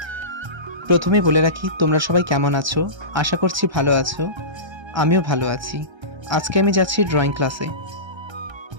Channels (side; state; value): left; late; 1.3 ms